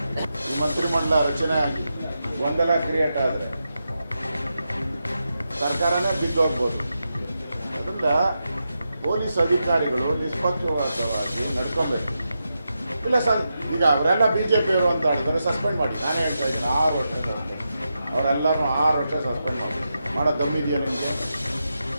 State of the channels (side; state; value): both; inverted; correlation -0.87